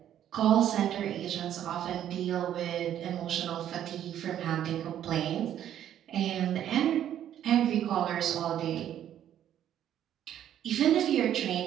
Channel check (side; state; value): left; quieter; 10.8 dB